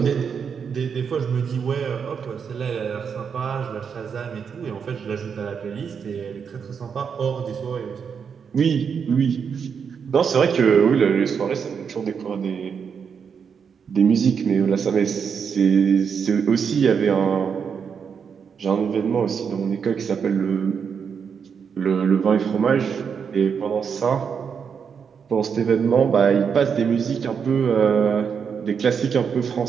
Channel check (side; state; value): left; quieter; 6.6 dB